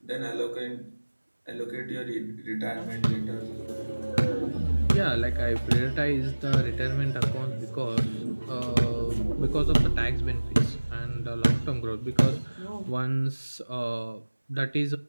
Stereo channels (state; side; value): inverted; both; correlation -1.00